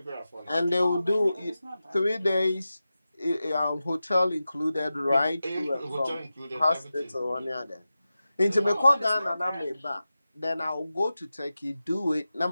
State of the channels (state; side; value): inverted; both; correlation -0.93